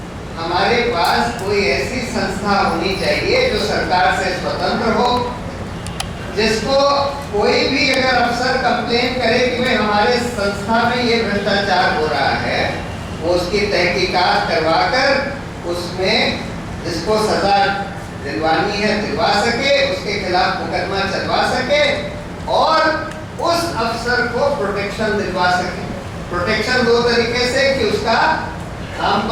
हमारे पास कोई ऐसी संस्था होनी चाहिए जो सरकार से स्वतंत्र हो, जिसको कोई भी अगर अफसर कंप्लेन करे कि भाई हमारे संस्था में ये भ्रष्टाचार हो रहा है, वो उसकी तहकीकात करवाकर उसमें जिसको सजा दिलवानी है दिलवा सके, उसके खिलाफ मुकदमा चलवा सके और उस अफसर को प्रोटेक्शन दिलवा सके। प्रोटेक्शन दो तरीके से कि उसका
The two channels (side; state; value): both; identical; correlation 1.00